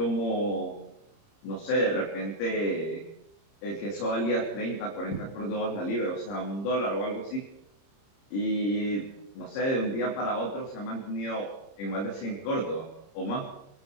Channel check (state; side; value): late; right; 30 ms